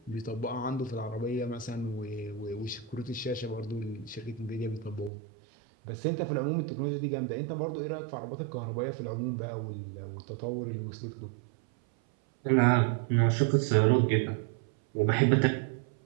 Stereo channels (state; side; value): drops out; left; at 5.1 s